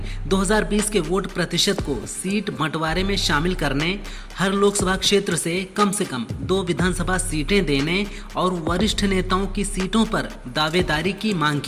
2020 के वोट प्रतिशत को सीट बंटवारे में शामिल करने, हर लोकसभा क्षेत्र से कम 2 विधानसभा सीटें देने और वरिष्ठ नेताओं की सीटों पर दावेदारी की मांग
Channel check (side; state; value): both; identical; correlation 1.00